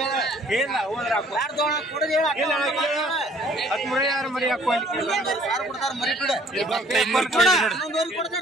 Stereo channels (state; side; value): normal; both; correlation 0.57